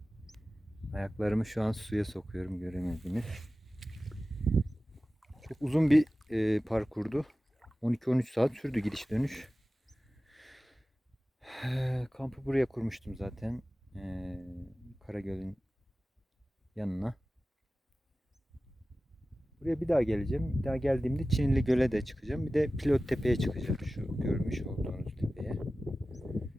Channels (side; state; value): both; normal; correlation 0.96